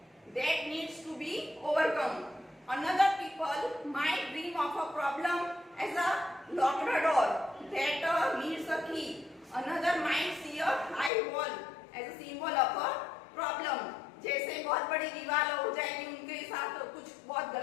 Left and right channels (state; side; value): drops out; right; at 11.1 s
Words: That needs to be overcome. Another people might dream of a problem as a locked door that needs a key. Another might see a high wall as a symbol of a problem। जैसे बहुत बड़ी दीवार हो जाएगी उनके साथ, कुछ बहुत